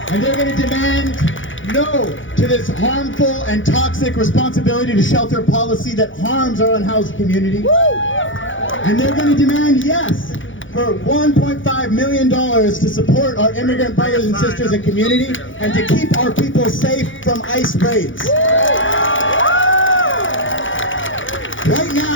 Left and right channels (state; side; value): late; right; 0.56 ms